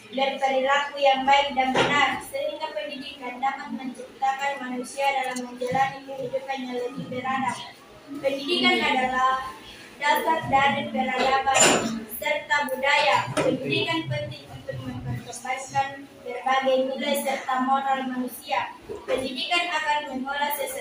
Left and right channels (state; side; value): identical; both; correlation 1.00